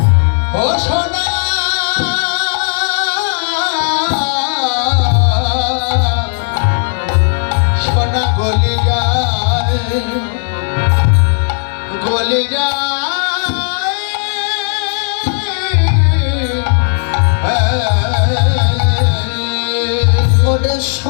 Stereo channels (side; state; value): right; silent; digital silence